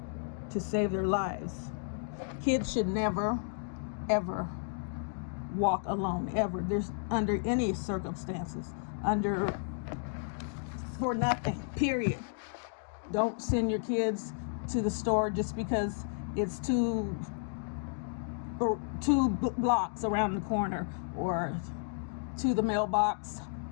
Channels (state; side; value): silent; right; digital silence